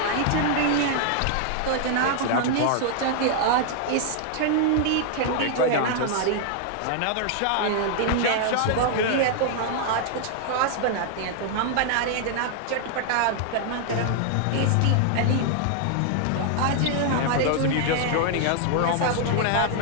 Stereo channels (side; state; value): both; different; correlation -0.01